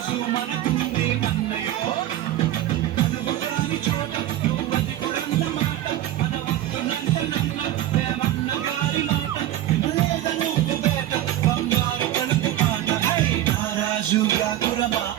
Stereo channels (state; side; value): quieter; left; 13.1 dB